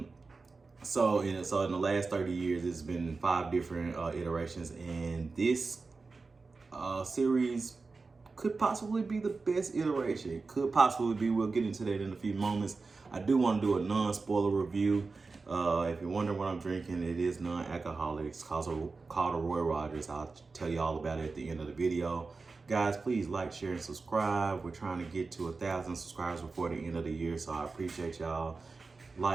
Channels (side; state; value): left; quieter; 4.1 dB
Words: So in the last 30 years, it's been five different iterations, and this series could possibly be the best iteration. It could possibly be. We'll get into that in a few moments. I do want to do a non-spoiler review. If you're wondering what I'm drinking, it is non-alcoholic. It's called a Roy Rogers. I'll tell you all about it at the end of the video. Guys, please like, share, and subscribe. We're trying to get to 1,000 subscribers before the end of the year, so I appreciate y'all